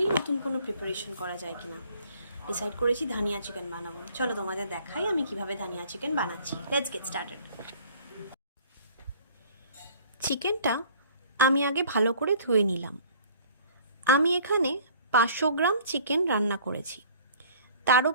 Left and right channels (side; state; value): both; inverted; correlation -0.52